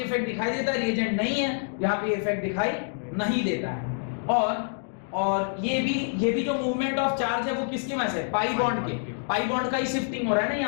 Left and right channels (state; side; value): silent; right; digital silence